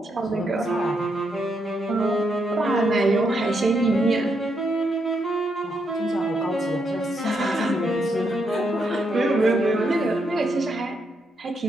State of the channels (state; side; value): normal; both; correlation 0.79